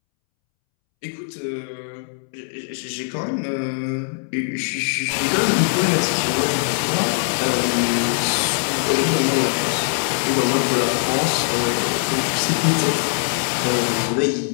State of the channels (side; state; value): right; silent; 65 dB below the other